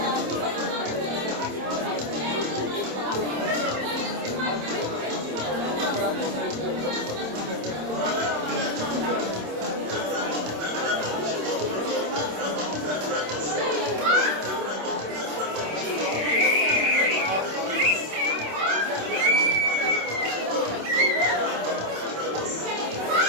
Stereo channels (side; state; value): left; late; 27 ms